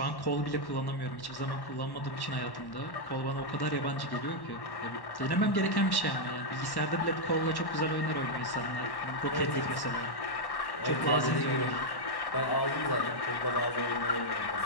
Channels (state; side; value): late; right; 1.1 ms